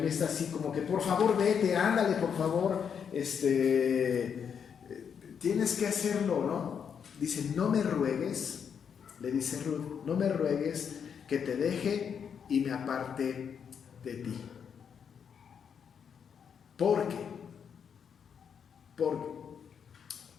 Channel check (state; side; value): quieter; right; 7.3 dB